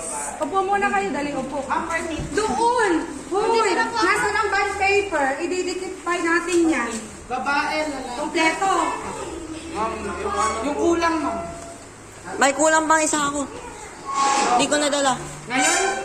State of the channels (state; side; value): identical; both; correlation 1.00